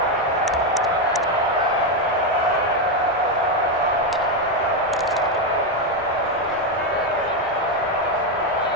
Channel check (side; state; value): both; normal; correlation 0.07